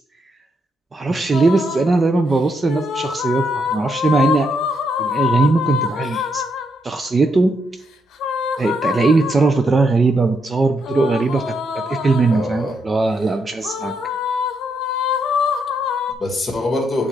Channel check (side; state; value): both; normal; correlation 0.78